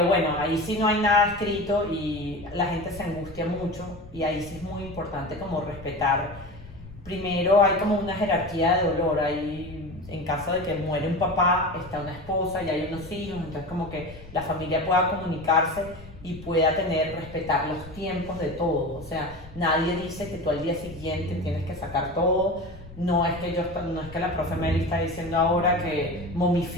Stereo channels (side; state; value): left; noise; rumble, 18 dB below the sound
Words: bueno, ahí sí no hay nada escrito y la gente se angustia mucho y ahí sí es muy importante como respetar. Primero hay como una jerarquía de dolor, hay, en caso de que muere un papá, está una esposa y hay unos hijos, entonces como que la familia pueda comunicarse y pueda respetar los tiempos de todo, o sea, nadie dice que tú al día siguiente tienes que sacar todo. No es que la profe Meli está diciendo ahora que